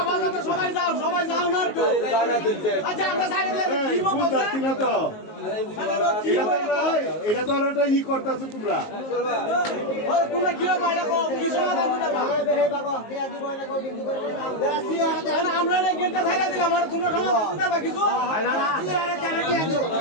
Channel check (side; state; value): right; late; 19 ms